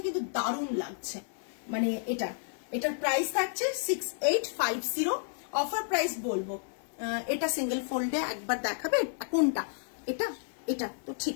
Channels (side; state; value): right; silent; 57 dB below the other